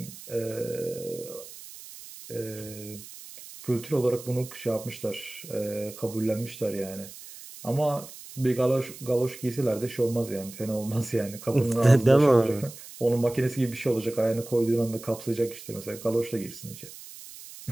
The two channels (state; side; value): noise; right; hiss, 15 dB below the sound